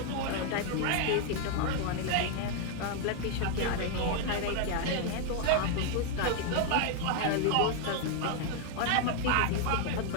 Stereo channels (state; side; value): different; both; correlation 0.00